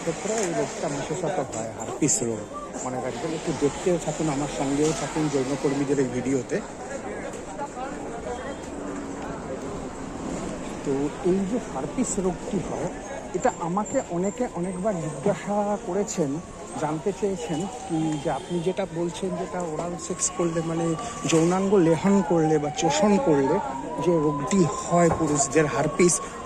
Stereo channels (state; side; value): noise; left; hum, 28 dB below the sound